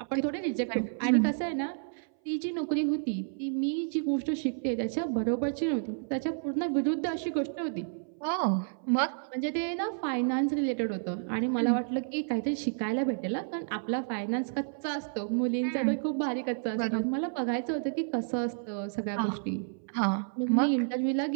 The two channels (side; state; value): left; silent; 57 dB below the other